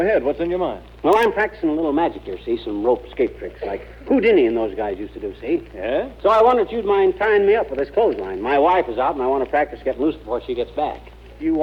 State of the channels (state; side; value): identical; both; correlation 1.00